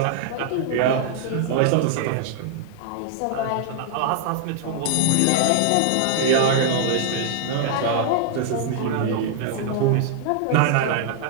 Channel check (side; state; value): both; different; correlation -0.01